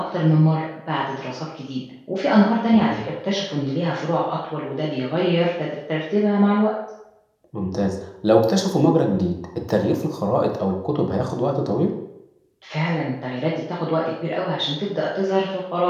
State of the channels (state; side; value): identical; both; correlation 1.00